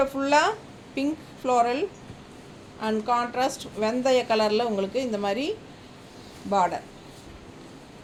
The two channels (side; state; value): both; identical; correlation 1.00